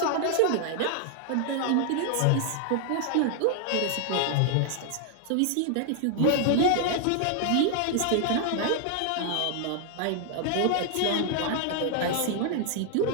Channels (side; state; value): both; different; correlation 0.00